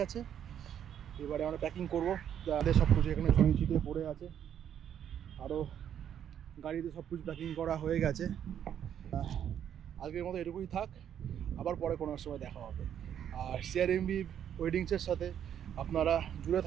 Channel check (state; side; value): quieter; left; 9.4 dB